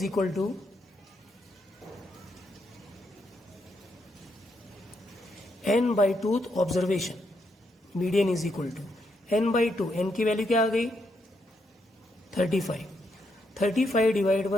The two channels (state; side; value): normal; both; correlation 0.79